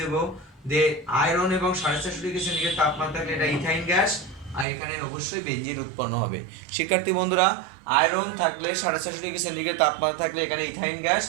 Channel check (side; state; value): left; drops out; at 4.7 s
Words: যে আয়রন এবং 450 ডিগ্রি সেন্টিগ্রেড তাপমাত্রা থাকলে এটা ইথাইন গ্যাস, আর এখানে অবশ্যই বেনজিন উৎপন্ন হবে। শিক্ষার্থী বন্ধুরা, আয়রন থাকলে 450 ডিগ্রি সেন্টিগ্রেড তাপমাত্রা থাকলে এখানে ইথাইন গ্যাস,